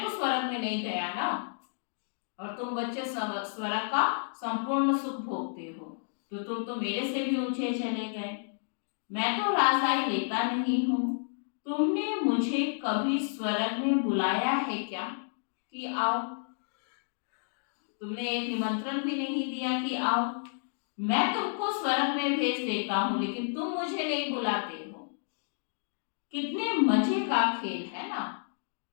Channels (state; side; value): silent; right; digital silence